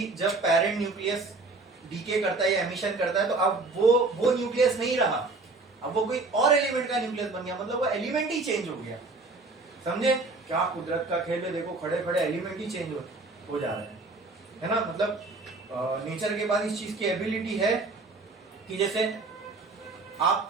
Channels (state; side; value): quieter; left; 3.5 dB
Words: जब पेरेंट न्यूक्लियस डीके करता है या एमिशन करता है, तो अब वो न्यूक्लियस नहीं रहा, अब वो कोई और एलिमेंट का न्यूक्लियस बन गया, मतलब वो एलिमेंट ही चेंज हो गया। समझे क्या कुदरत का खेल है, देखो खड़े खड़े एलिमेंट ही चेंज हो जा रहे है ना। मतलब नेचर के पास इस चीज की एबिलिटी है कि जैसे